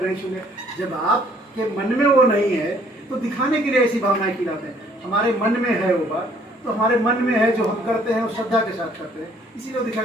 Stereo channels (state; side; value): normal; both; correlation 0.61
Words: नहीं छूने। जब आपके मन में वो नहीं है तो दिखाने के लिए ऐसी भावनाएं खिलाते हैं। हमारे मन में है वो बात, तो हमारे मन में है, जो हम करते हैं वो श्रद्धा के साथ करते हैं, इसीलिए वो